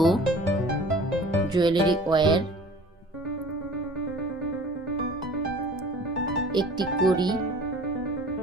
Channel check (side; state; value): both; normal; correlation 0.46